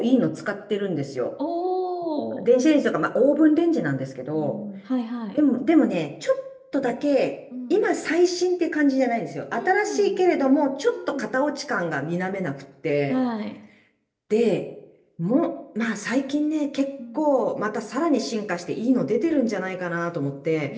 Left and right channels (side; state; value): both; identical; correlation 1.00